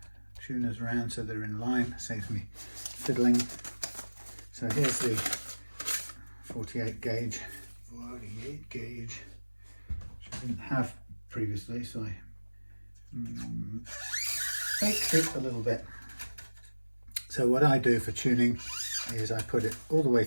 tuners around so they're in line, saves me fiddling. So here's the 48 gauge, which I didn't have previously, so I faked it a little bit. So what I do for tuning is I put it all the way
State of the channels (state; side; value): inverted; both; correlation -1.00